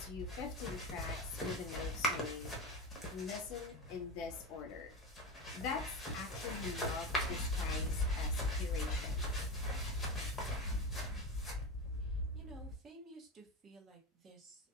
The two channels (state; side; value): normal; both; correlation 0.20